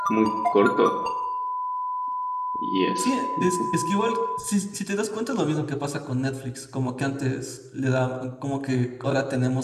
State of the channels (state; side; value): identical; both; correlation 1.00